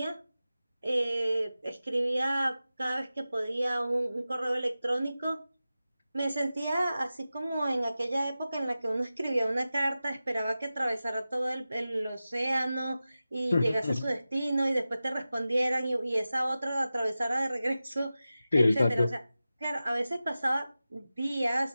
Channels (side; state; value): both; inverted; correlation -0.94